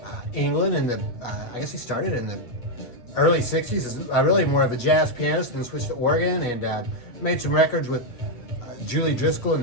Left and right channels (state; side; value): late; right; 8.3 ms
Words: England in the, I guess he started in the early 60s. Is really more of a jazz pianist, then switched to organ and made some records with Julie Driscoll